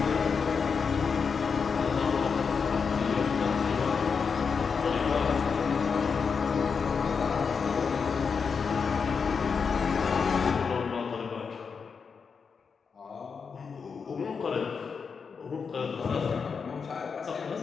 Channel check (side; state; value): right; quieter; 5.7 dB